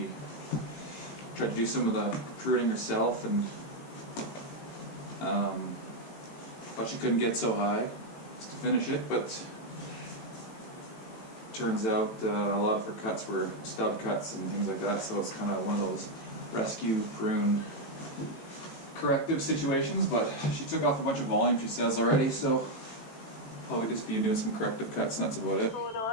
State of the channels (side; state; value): right; late; 18 ms